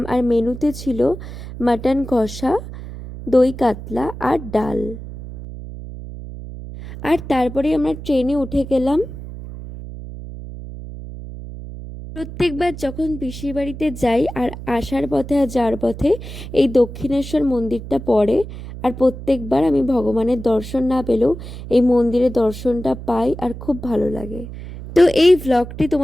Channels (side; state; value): right; noise; hum, 11 dB below the sound